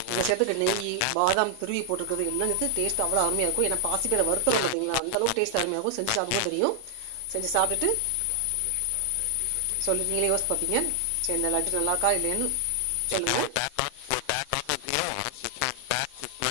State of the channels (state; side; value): different; both; correlation 0.00